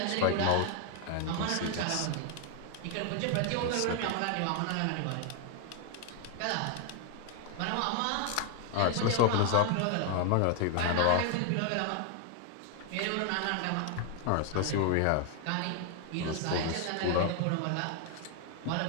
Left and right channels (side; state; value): both; different; correlation 0.00